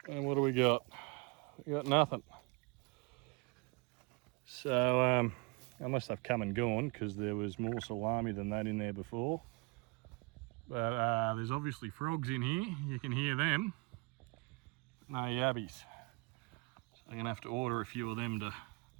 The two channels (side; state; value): left; quieter; 28.7 dB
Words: And what do we got? We got nothing. So, unless they've come and gone, because there was more salami than that in there before. But there's obviously frogs in here. You can hear them. No yabbies. So I'm gonna have to order a few of them to